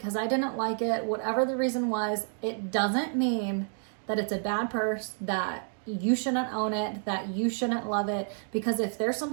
I didn't like it, whatever the reason was, it doesn't mean that it's a bad purse, that you shouldn't own it, that you shouldn't love it. Because if there's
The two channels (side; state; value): left; silent; 58 dB below the other